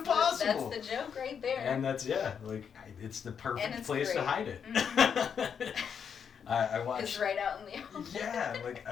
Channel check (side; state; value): right; quieter; 7.3 dB